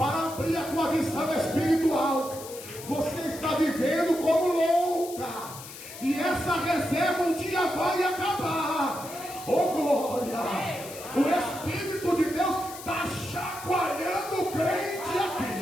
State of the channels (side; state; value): left; noise; hiss, 14 dB below the sound